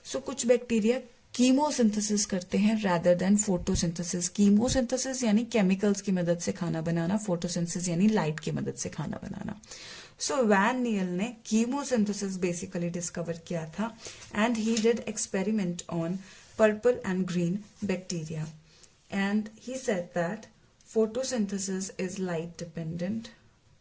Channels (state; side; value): identical; both; correlation 1.00